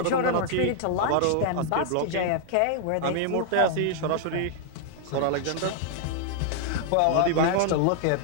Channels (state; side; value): different; both; correlation -0.01